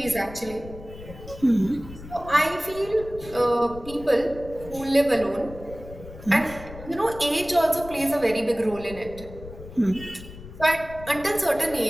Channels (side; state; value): left; noise; rumble, 15 dB below the sound